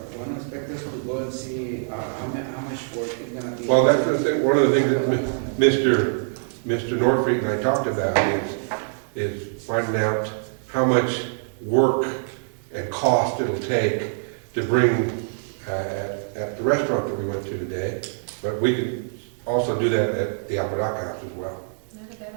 one of the inspectors to go and see how much work is gonna be? Well, that's the thing, one of the things that Mr. Norfleet and I talked about is finding out how much work and cost it'll take to bring, at the restaurant that we went to today, but we can also do that at the Apodaca House as well. Not a bad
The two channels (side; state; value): left; silent; digital silence